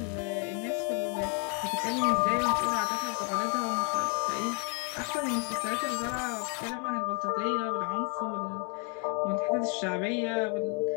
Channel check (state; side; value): quieter; right; 37.8 dB